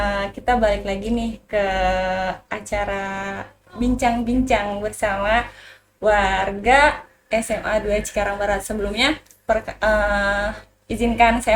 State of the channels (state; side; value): identical; both; correlation 1.00